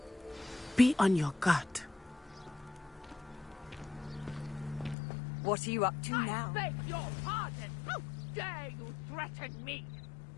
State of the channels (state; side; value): drops out; right; at 5.0 s